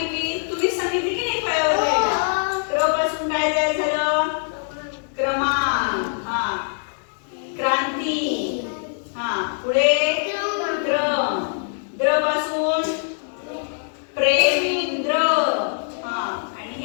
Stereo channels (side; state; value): right; silent; digital silence